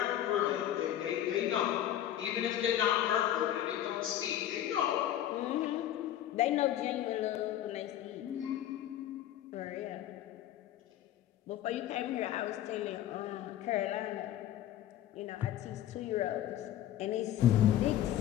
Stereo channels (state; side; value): quieter; right; 12.0 dB